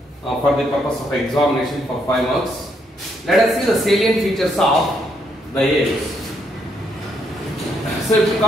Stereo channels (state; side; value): normal; both; correlation 0.74